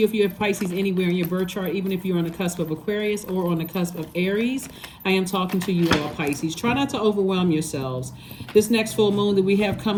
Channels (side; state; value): both; identical; correlation 1.00